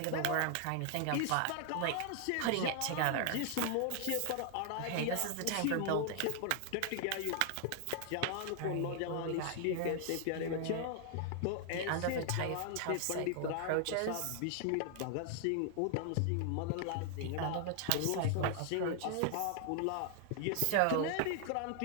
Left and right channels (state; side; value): different; both; correlation 0.00